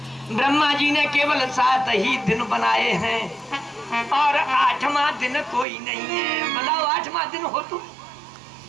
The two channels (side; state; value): left; drops out; at 5.7 s